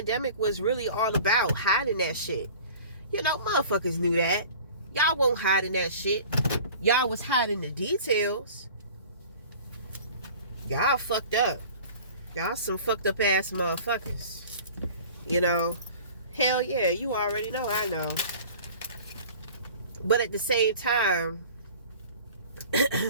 was really all about, hiding that shit. Motherfuckers knew that. Y'all won't hide in that shit. Y'all was hiding the details. Y'all fucked up. Y'all some fucked up ass motherfuckers. You know, hell yeah, you already know, I know. But at the same time,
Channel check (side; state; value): both; inverted; correlation -0.44